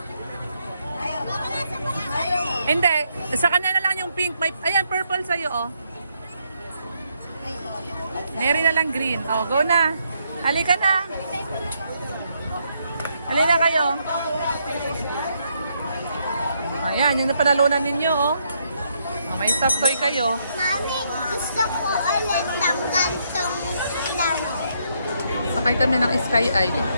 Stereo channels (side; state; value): both; inverted; correlation -0.75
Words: Hindi, sa kanya na lang yung pink. May, ayan, purple sa'yo, oh. Mary na lang green. Oh, go na. Halika na. Halika kayo. Ayan, yung napanalunan ninyo, oh. Oh, may stuffed toy kayo. Mami, gusto ko ulit ng gantong laro. Sakay kami ng Sky Eye.